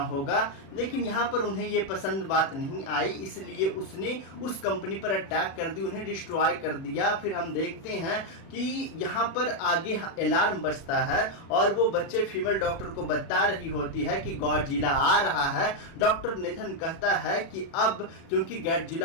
होगा। लेकिन यहाँ पर उन्हें ये पसंद बात नहीं आई, इसलिए उसने उस कंपनी पर अटैक कर दी, उन्हें डिस्ट्रॉय कर दिया। फिर हम देखते हैं कि यहाँ पर आगे अलार्म बजता है और वो बच्चे फीमेल डॉक्टर को बता रही होती है कि गॉडजिला आ रहा है। डॉक्टर नेथन कहता है कि अब क्योंकि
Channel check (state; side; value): late; right; 36 ms